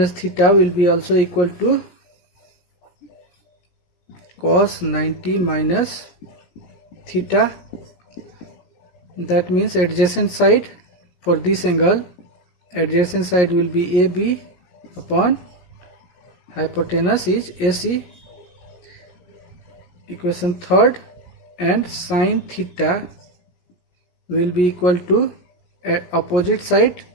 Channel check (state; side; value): late; right; 17 ms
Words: theta will be also equal to cos 90 minus theta. That means adjacent side for this angle, adjacent side will be AB upon hypotenuse is AC. Equation third, and sine theta will be equal to opposite side,